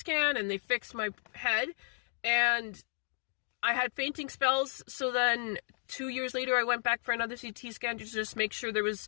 and they fixed my head, and I had fainting spells. So then 2 years later, I went back for another CT scan to just make sure there was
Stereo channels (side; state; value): right; silent; digital silence